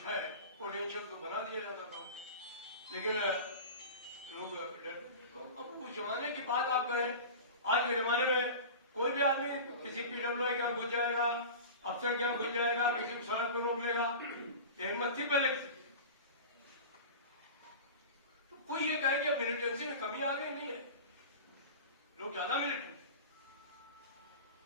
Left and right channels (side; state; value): both; inverted; correlation -0.32